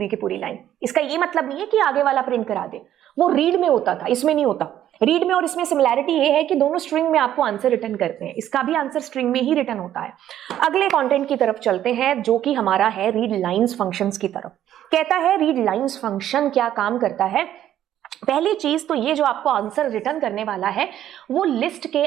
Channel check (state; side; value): quieter; left; 11.6 dB